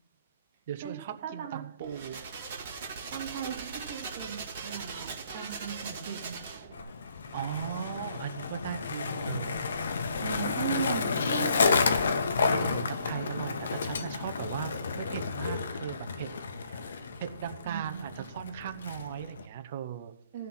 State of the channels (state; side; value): inverted; both; correlation -0.66